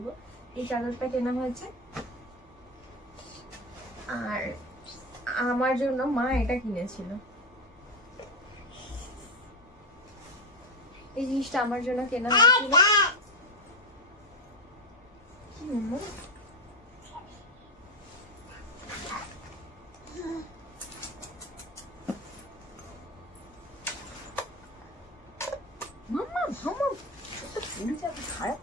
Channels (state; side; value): normal; both; correlation 0.14